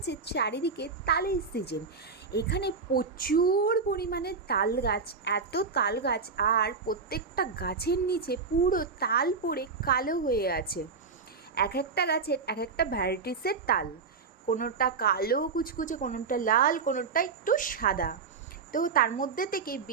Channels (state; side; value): quieter; left; 4.9 dB